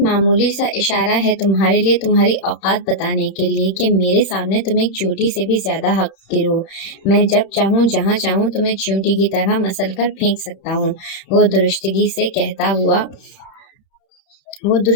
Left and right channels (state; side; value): late; right; 31 ms